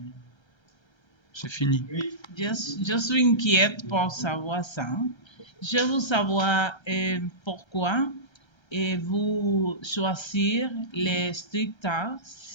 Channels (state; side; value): late; right; 1.3 ms